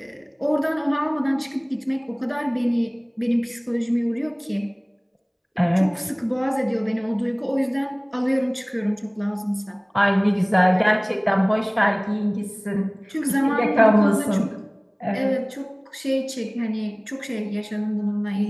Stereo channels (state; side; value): identical; both; correlation 1.00